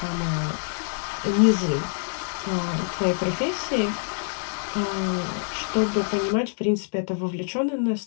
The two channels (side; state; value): right; silent; digital silence